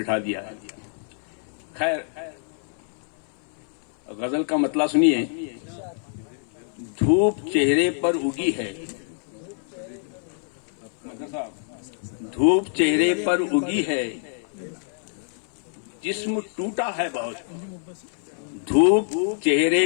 दिया। खैर, गजल का मतला सुनिए। धूप चेहरे पर उगी है, धूप चेहरे पर उगी है, जिस्म टूटा है बहुत। धूप चेहरे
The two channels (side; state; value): right; silent; 59 dB below the other